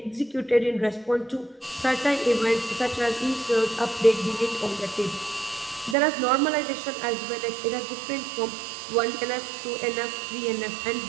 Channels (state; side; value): drops out; left; at 6.0 s